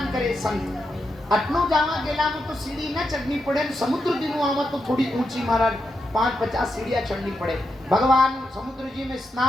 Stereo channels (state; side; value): normal; both; correlation 0.85